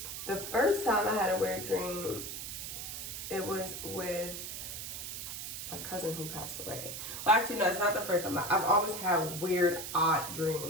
the first time I had a weird dream, it was with my cousin who passed away. Well, actually, no, it's not the first time. I've always had weird, odd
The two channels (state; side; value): noise; right; hiss, 7 dB below the sound